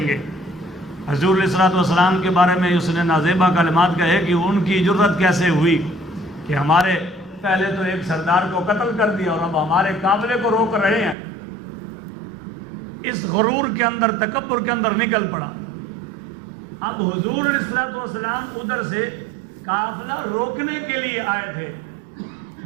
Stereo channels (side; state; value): left; drops out; at 11.2 s